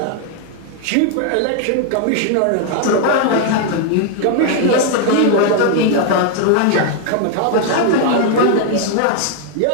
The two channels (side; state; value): both; different; correlation 0.00